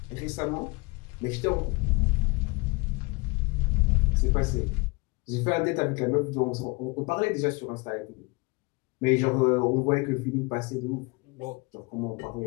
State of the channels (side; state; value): right; quieter; 27.4 dB